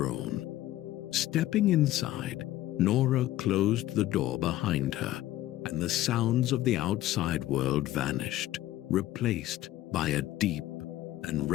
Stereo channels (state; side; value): quieter; right; 14.8 dB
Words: Stepping inside, Nora closed the door behind her, and the sounds of the outside world vanished, replaced by a deep and